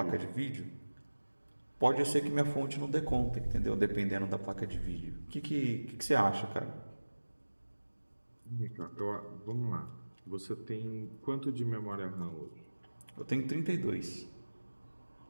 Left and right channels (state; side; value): inverted; both; correlation -1.00